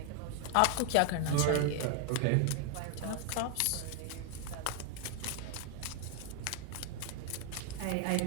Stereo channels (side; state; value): both; different; correlation 0.00